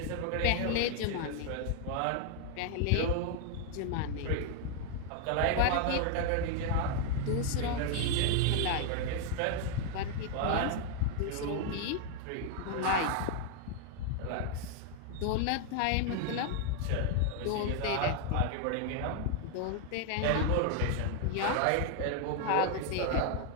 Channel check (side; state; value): both; different; correlation 0.00